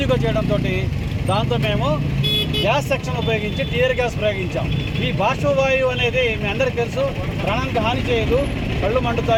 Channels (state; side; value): identical; both; correlation 1.00